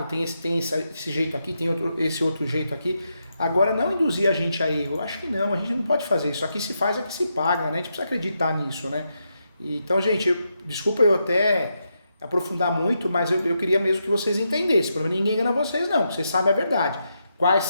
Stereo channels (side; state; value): both; inverted; correlation -0.83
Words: tem esse jeito aqui, tem esse outro jeito aqui. Agora, não induzir a gente a erro. Acho que não, a gente não pode fazer isso. Aqui se faz, aqui se paga, né? A gente precisa acreditar nisso, né? Então, gente, desculpa eu até aprofundar muito, mas eu queria mesmo que vocês entendessem. Para ninguém engana vocês, não. Vocês sabem a verdade. Quais